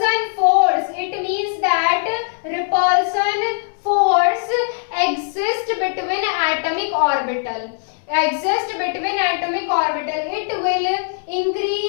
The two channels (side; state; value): right; silent; digital silence